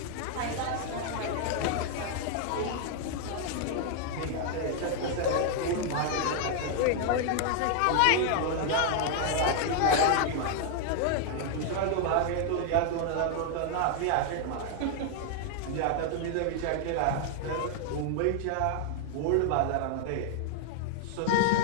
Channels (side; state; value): both; different; correlation 0.00